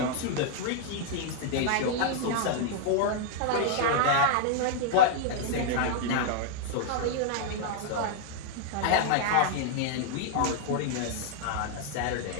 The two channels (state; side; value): different; both; correlation -0.01